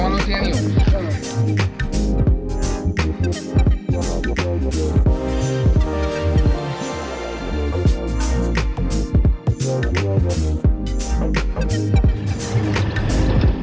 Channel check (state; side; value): identical; both; correlation 1.00